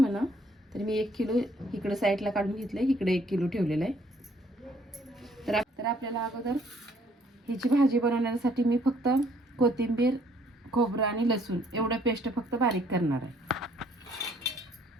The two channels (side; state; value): both; normal; correlation 0.64